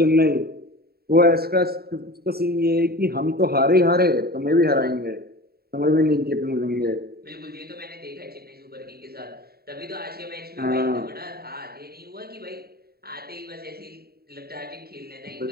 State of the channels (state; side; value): late; left; 0.45 ms